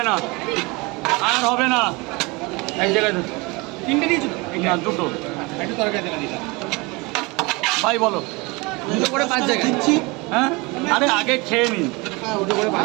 না, আর হবে না, এক জায়গায় 3টে দিয়েছো তো? না, দুটো। একটু তরকারি তেলা দিলাম। ভাই বলো। দুটো করে 5 জায়গা দিচ্ছি। হ্যাঁ, আরে আগে খেয়ে নিন। হ্যাঁ, দুটো করে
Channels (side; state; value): left; quieter; 25.6 dB